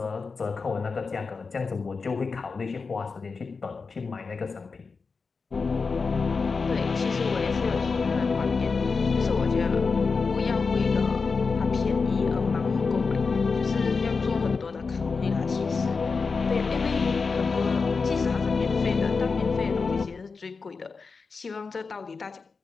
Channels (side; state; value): right; quieter; 4.7 dB